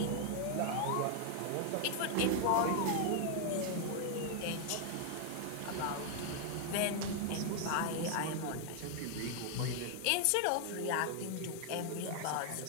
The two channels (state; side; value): different; both; correlation 0.00